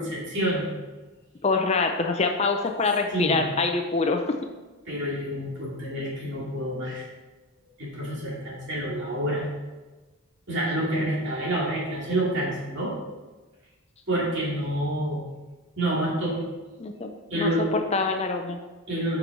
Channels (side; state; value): both; normal; correlation 0.19